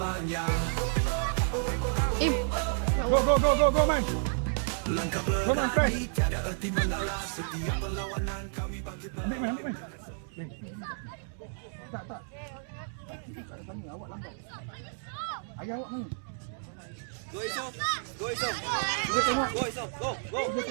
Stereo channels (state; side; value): silent; left; digital silence